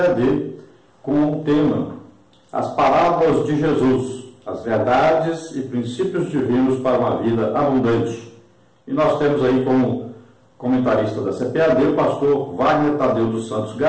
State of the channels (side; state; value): both; identical; correlation 1.00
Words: com o tema As Parábolas de Jesus, as verdades e princípios divinos para uma vida abundante. E nós temos aí como comentarista da CPAD o pastor Wagner Tadeu dos Santos